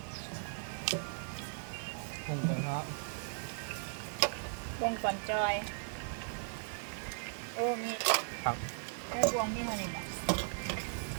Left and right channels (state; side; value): silent; left; digital silence